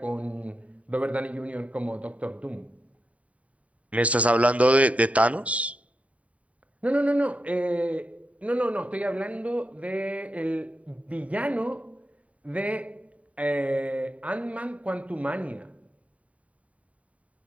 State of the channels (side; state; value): left; late; 0.067 ms